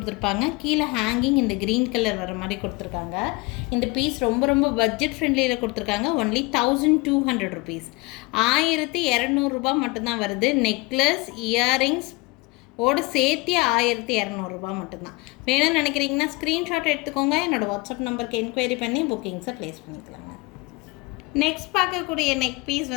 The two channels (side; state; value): right; quieter; 25.1 dB